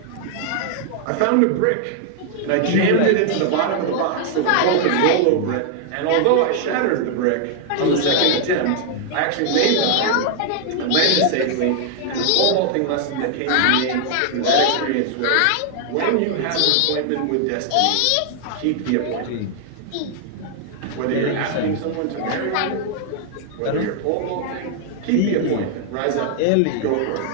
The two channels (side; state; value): both; different; correlation 0.00